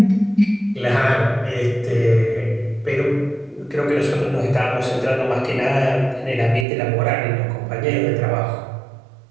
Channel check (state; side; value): drops out; left; at 6.7 s